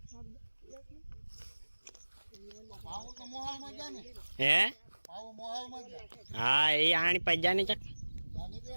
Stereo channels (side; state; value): both; inverted; correlation -1.00